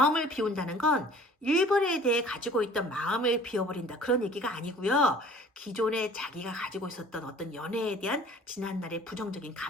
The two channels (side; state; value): both; normal; correlation 0.50